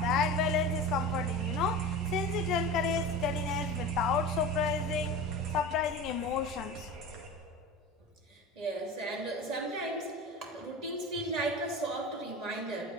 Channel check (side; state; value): both; normal; correlation 0.31